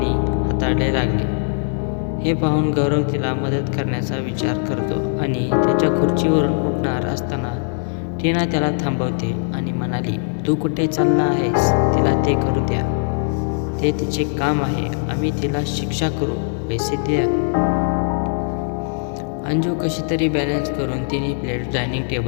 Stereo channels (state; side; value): silent; right; 65 dB below the other